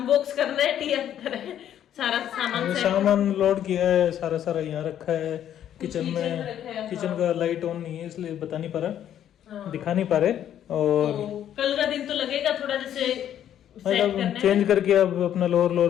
करना है, टिया तरह सारा सामान लोड किया है, सारा यहाँ रखा है किचन में। किचन का लाइट ऑन नहीं है इसलिए बता नहीं पा रहा, दिखा नहीं पा रहे। और तो कल का दिन तो लगेगा थोड़ा जैसे मतलब चेंज करके अब अपना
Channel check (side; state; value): right; quieter; 10.5 dB